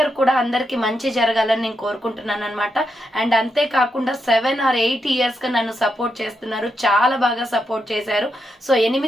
కూడా అందరికి మంచి జరగాలని నేను కోరుకుంటున్నాను అనమాట. అండ్ అంతేకాకుండా 7 or 8 years గా నన్ను సపోర్ట్ చేస్తున్నారు, చాలా బాగా సపోర్ట్ చేశారు. సో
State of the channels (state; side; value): normal; both; correlation 0.83